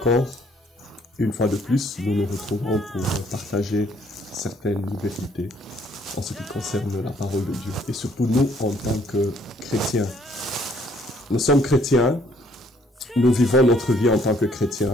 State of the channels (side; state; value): both; normal; correlation 0.64